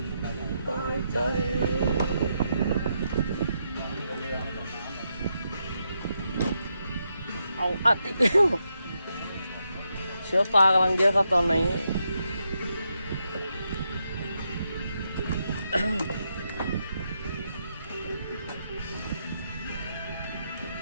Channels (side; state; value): both; inverted; correlation -0.82